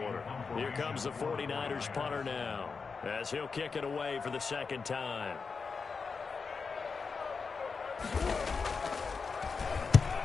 Here comes the 49ers punter now, as he'll kick it away for the 2nd time.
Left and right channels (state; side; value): quieter; right; 5.0 dB